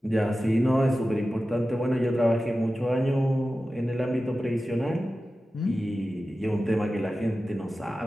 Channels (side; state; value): both; normal; correlation 0.94